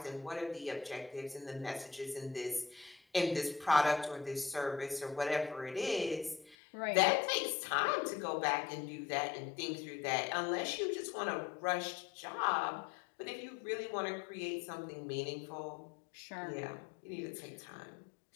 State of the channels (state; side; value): drops out; right; at 6.6 s